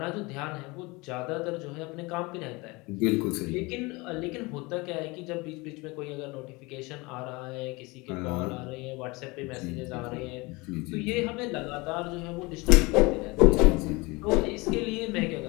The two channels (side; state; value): right; quieter; 24.8 dB